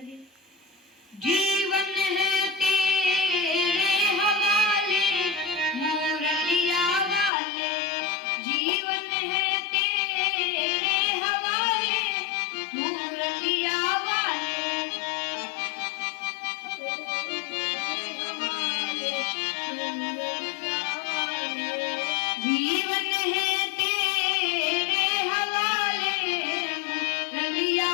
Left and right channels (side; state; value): right; drops out; at 7.3 s